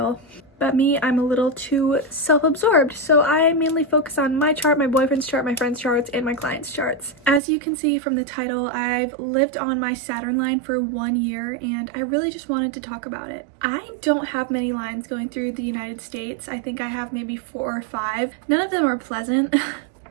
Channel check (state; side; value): drops out; left; at 7.4 s